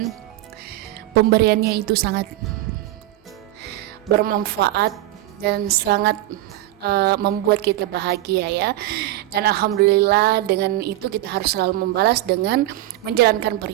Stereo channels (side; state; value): left; quieter; 15.5 dB